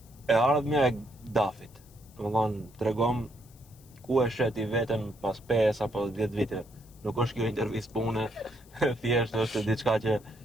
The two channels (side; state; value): left; noise; hiss, 27 dB below the sound